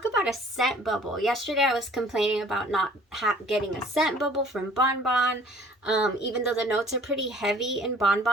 about a scent bubble. Yesterday I was complaining about not getting a scent bubble from Bon Bon. Even though the notes are pretty heavy in Bon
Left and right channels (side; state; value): both; normal; correlation 0.53